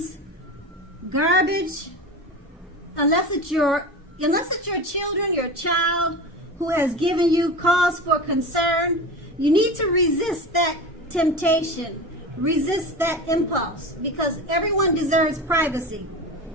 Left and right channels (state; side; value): normal; both; correlation 0.29